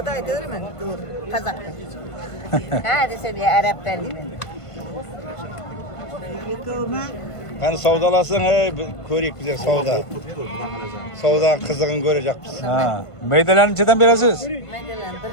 da aytılır mı? Dur. Kazak'ta. Ha desem ya Arap'tan diyeyim. Hani savdalasın körük bize savda. Savdanın kızığını görecekmiz. Ha. Meydelerni nechdan berasiz? Maydalan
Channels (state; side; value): late; right; 1.5 ms